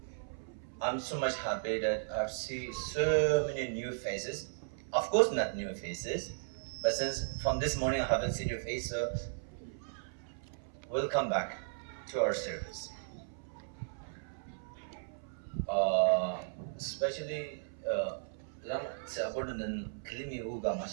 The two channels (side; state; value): left; silent; 54 dB below the other